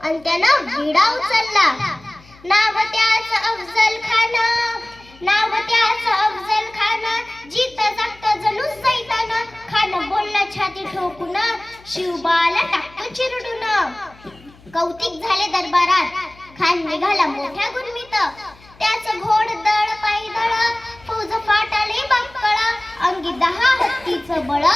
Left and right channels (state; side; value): noise; left; hum, 25 dB below the sound